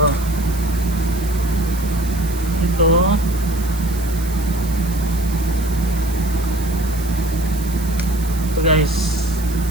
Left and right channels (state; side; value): noise; right; hiss, 14 dB below the sound